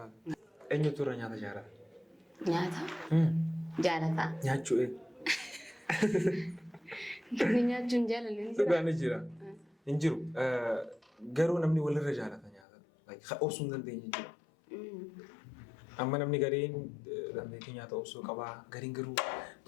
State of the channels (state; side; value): drops out; right; at 12.7 s